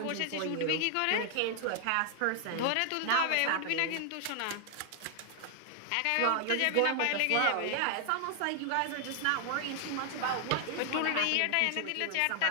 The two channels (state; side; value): different; both; correlation 0.00